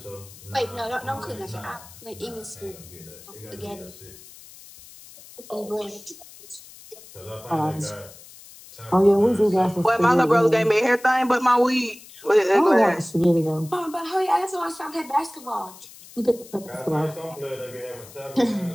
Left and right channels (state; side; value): noise; left; hiss, 20 dB below the sound